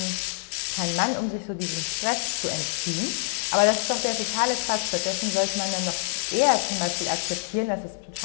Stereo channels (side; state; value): right; silent; 61 dB below the other